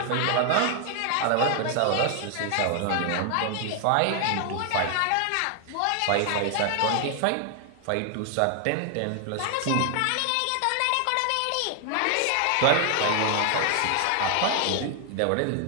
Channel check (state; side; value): different; both; correlation 0.00